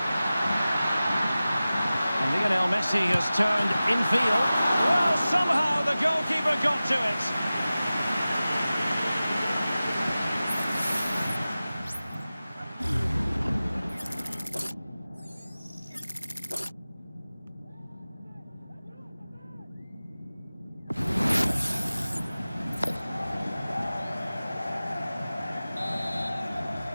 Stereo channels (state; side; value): inverted; both; correlation -0.96